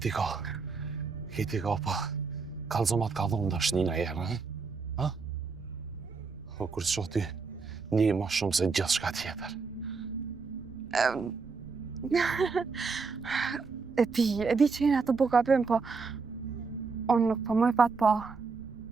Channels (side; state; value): left; quieter; 4.7 dB